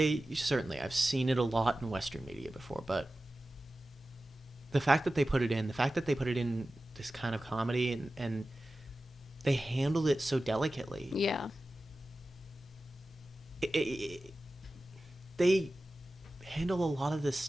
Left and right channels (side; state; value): both; normal; correlation 0.95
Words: Certainly. I've seen it a lot in Western media before, but the fact that they put it in this kind of comedy, and they handled it so delicately. Yeah. They handle a lot of this